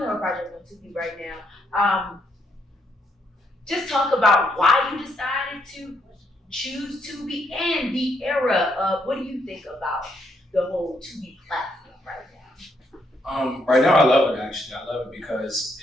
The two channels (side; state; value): both; normal; correlation 0.75